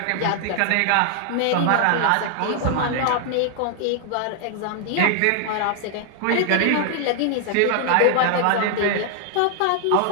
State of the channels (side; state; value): both; different; correlation 0.00